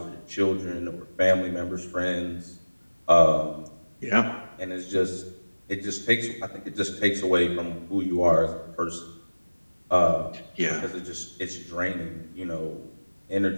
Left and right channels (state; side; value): inverted; both; correlation -1.00